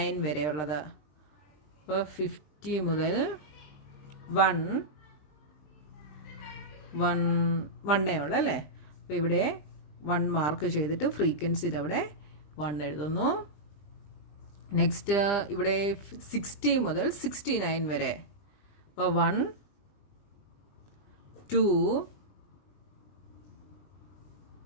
വരെയുള്ളത്. അപ്പോൾ 50 മുതൽ 1 ഉള്ളൂ അല്ലേ? അപ്പോൾ ഇവിടെ 1 മാർക്ക് ചെയ്തിട്ട് ഫ്രീക്വൻസിയിൽ അവിടെ 1 എഴുതുന്നു. നെക്സ്റ്റ് ഇവിടെ 60 മുതൽ 69 വരെ. അപ്പോൾ 1, 2,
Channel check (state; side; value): late; right; 20 ms